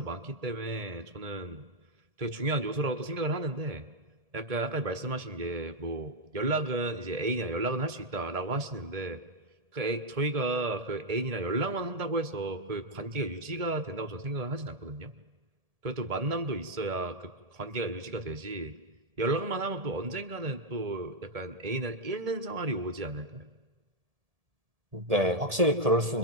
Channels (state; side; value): late; left; 1.7 ms